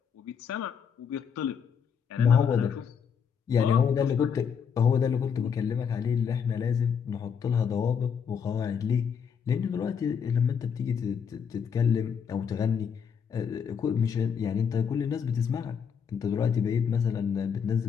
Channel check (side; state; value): right; quieter; 7.0 dB